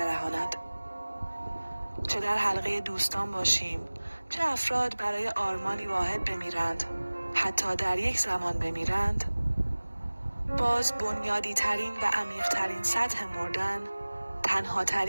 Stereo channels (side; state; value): both; inverted; correlation -1.00